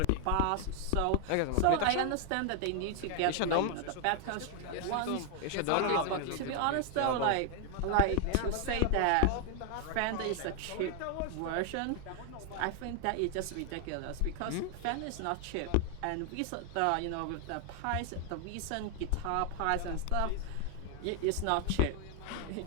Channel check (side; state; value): both; different; correlation 0.00